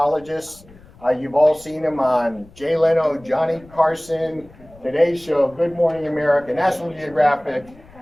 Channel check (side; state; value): left; noise; rumble, 24 dB below the sound